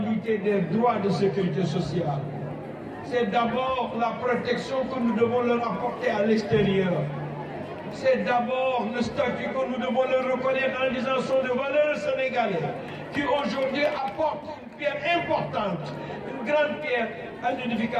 des droits de sécurité sociale. C'est d'abord la protection que nous devons leur apporter à l'extérieur. C'est d'abord le statut que nous devons leur reconnaître en disant sont de valeurs sénégalais qui aujourd'hui apportent une pierre importante, une grande pierre à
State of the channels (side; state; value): both; identical; correlation 1.00